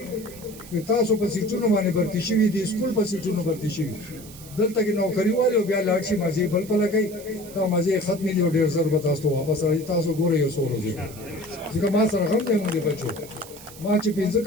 که تاسو په سیټونو باندې برتی شوي دي سکول په سیټونو برتی شوي دلته کې نوکری والے او بیا لاړ شي مزه بل په لګي تا مزه ختمې دي او ډیر زر به تاسو واپس راځي تاسو ګورئ یو سورې ځکه ما سره هم دې موږ بچو ما چې 15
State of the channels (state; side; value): noise; right; hiss, 18 dB below the sound